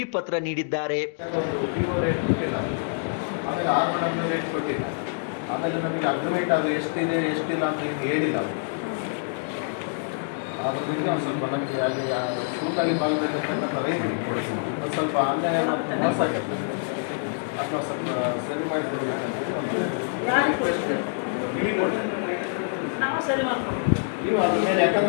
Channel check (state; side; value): silent; right; digital silence